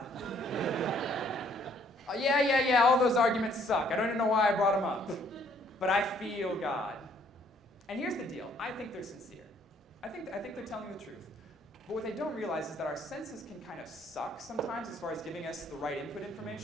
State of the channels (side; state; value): both; normal; correlation 0.64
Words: Yeah, all those arguments suck. I don't even know why I brought them up. But I feel God. And here's the deal. I think they're sincere. I think they're telling the truth. But what they don't realize is that our senses can kind of suck sometimes as far as giving us the right input